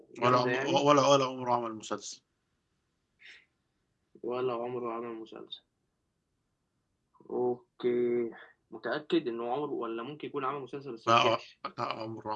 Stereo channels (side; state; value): both; identical; correlation 1.00